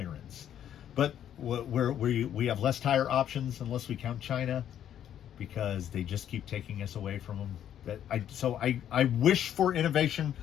But we have less tire options, unless we count China, because they just keep taking us away from them. I wish for innovation,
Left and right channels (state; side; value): quieter; right; 10.2 dB